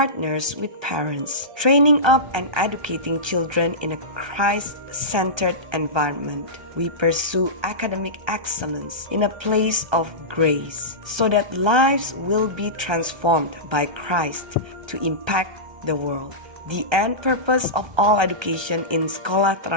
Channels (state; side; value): late; left; 1.2 ms